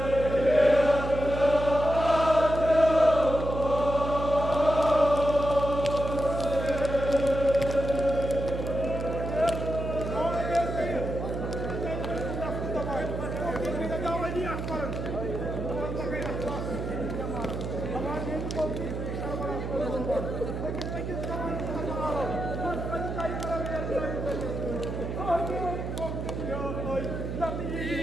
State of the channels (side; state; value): right; noise; hum, 5 dB below the sound